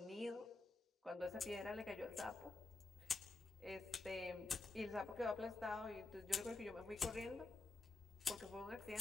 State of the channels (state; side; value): quieter; right; 3.4 dB